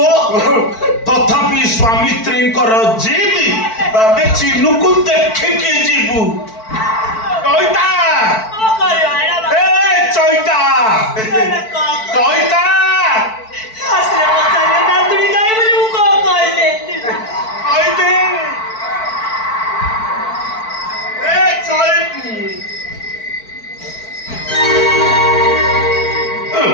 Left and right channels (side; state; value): right; late; 4.5 ms